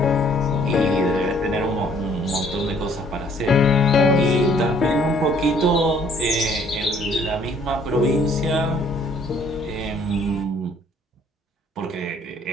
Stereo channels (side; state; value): both; normal; correlation 0.60